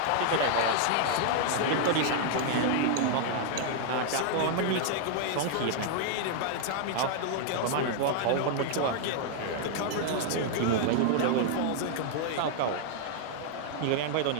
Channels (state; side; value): different; both; correlation -0.01